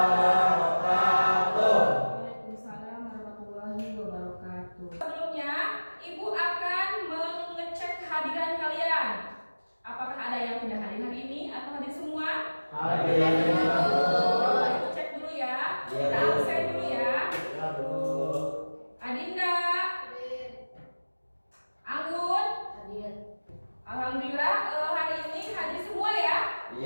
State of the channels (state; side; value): inverted; both; correlation -1.00